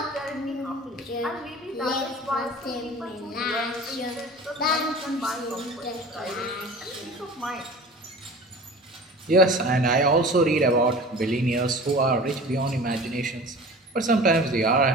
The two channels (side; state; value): both; normal; correlation 0.39